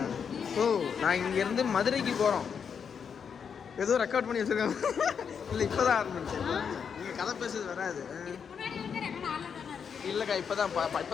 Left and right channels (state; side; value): quieter; right; 6.9 dB